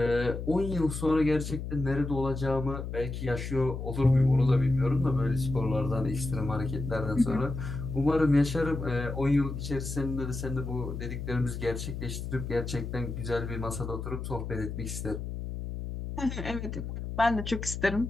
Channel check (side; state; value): left; noise; hum, 6 dB below the sound